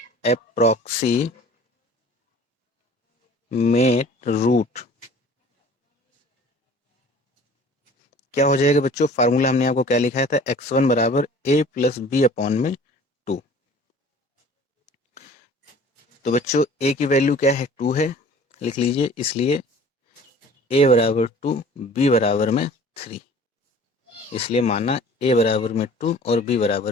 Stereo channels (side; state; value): both; normal; correlation 0.47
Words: अप्रोक्सीमेट रूट क्या हो जाएगा बच्चों? फार्मूला हमने आपको क्या लिखाया था? x1 = a + b अपॉन में 2। तो बच्चों a की वैल्यू क्या है? 2 है, लिख लीजिए। इसलिए a = 2, b = में 3। इसलिए माना a = में 2 और b